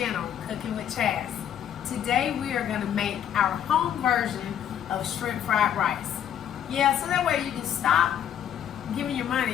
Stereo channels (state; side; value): quieter; right; 9.8 dB